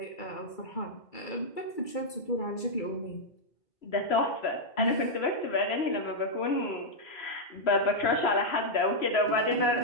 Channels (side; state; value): right; late; 2.3 ms